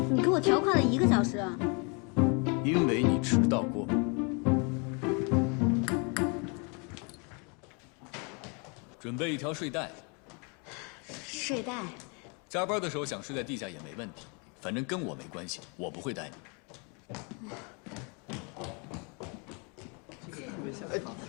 你给我调快了1个小时啊！因为你迟到过。准备一条睡袋。睡袋。加班的时候想睡在地下也没问题，反正跟我没关系，我不会带你。哎，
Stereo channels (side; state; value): right; quieter; 33.8 dB